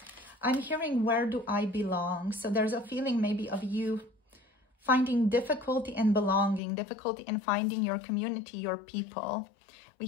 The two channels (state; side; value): drops out; right; at 6.6 s